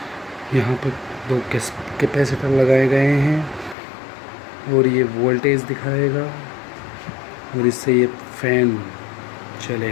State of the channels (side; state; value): right; drops out; at 3.8 s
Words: यहाँ पर दो कैपेसिटर लगाए गए हैं और ये वोल्टेज दिखाएगा और इससे ये फैन